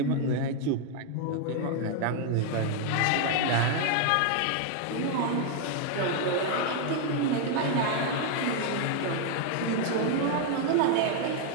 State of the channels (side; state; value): both; different; correlation 0.00